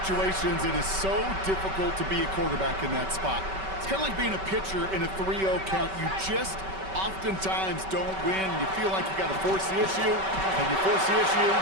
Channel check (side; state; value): left; late; 5.2 ms